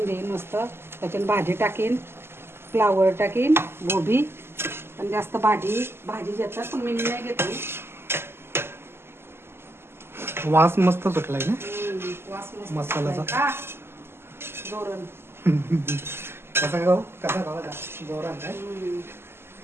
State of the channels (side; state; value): left; late; 0.12 ms